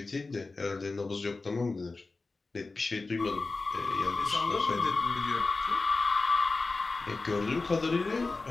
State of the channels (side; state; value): right; quieter; 3.7 dB